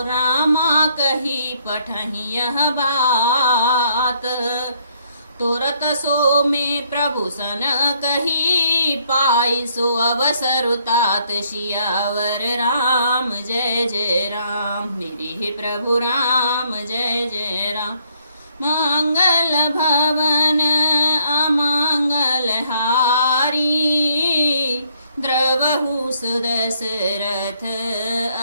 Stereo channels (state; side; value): inverted; both; correlation -0.69